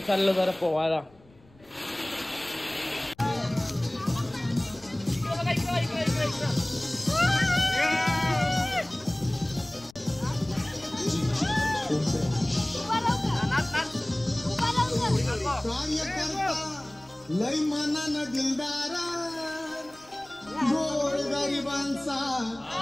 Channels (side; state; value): left; noise; rumble, 28 dB below the sound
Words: चाललो जरा पोवायला. लय मनानं दिलदारा गोर गरिबांचा